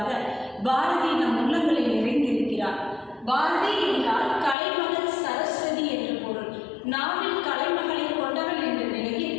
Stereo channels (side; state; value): right; drops out; at 4.5 s